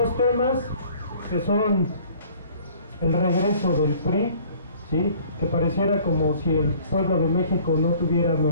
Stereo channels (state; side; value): inverted; both; correlation -0.53